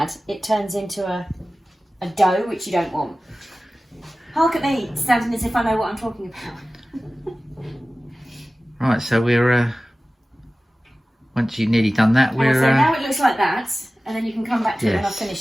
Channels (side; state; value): both; normal; correlation 0.96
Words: it turns into a dough, which you don't want. Hark at me, standing as if I know what I'm talking about. Right, so we're once you've nearly done that, we're so now it looks like that, and then you can come back to it when yes. I've